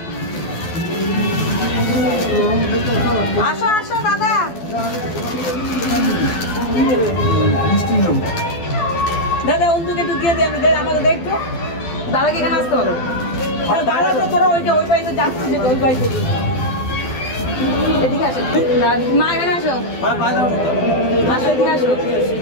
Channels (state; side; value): late; right; 12 ms